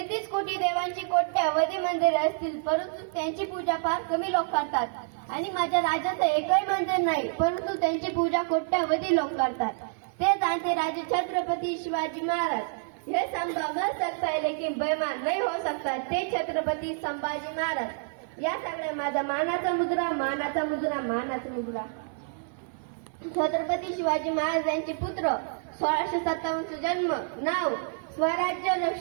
कोटी देवांची कोट्यावधी मंदिरे असतील, परंतु त्यांची पूजा फार कमी लोक करतात. आणि माझ्या राज्याचं एकही मंदिर नाही, परंतु त्यांची पूजा कोट्यावधी लोक करतात. ते जाणते राजे छत्रपती शिवाजी महाराज. हे संभव न सकता है लेकिन बेईमान नहीं हो सकता, ते छत्रपती संभाजी महाराज. या सगळ्या माझा मानाचा मुद्रा, मानाचा मुद्रा, मानाचा मुद्रा. छत्रपती शिवाजी महाराज यांचे पुत्र, 1657 जन्म, नाव स्वराज्य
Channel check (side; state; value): left; silent; 59 dB below the other